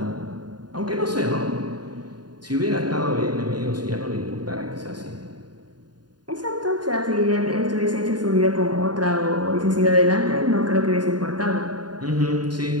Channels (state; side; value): late; left; 0.70 ms